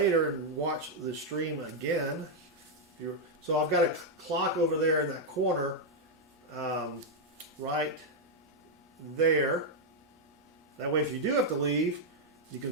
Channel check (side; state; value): both; normal; correlation -0.01